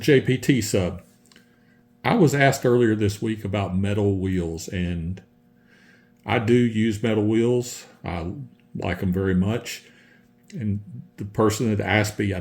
sub. I was asked earlier this week about metal wheels, and I do use metal wheels. I like them very much. And the person that asked me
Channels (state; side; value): identical; both; correlation 1.00